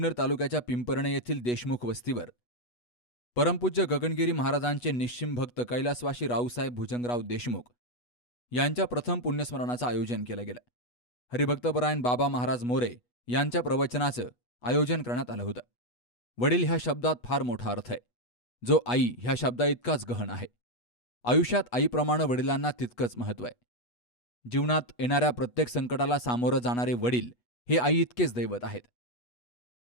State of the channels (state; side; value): late; right; 8.2 ms